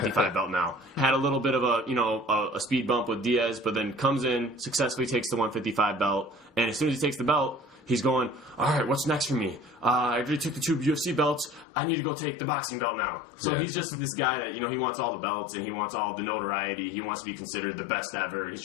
belt now. Had a little bit of a speed bump with Diaz, but then comes in, successfully takes the 155 belt, and as soon as he takes the belt, he's going, all right, what's next for me? I already took the 2 UFC belts. I need to go take the boxing belt now. So he's just this guy that, he wants all the belts and he wants all the notoriety. He wants to be considered the best ever. He's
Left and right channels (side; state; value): right; drops out; at 11.7 s